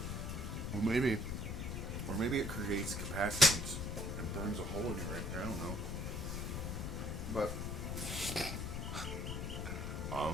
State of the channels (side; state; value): left; noise; rumble, 3 dB below the sound